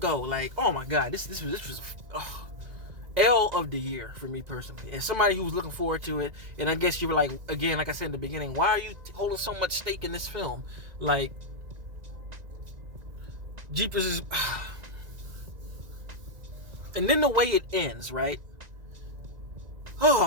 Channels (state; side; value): late; left; 1.9 ms